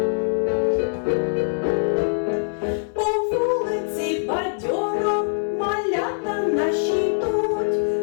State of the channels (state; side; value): silent; right; digital silence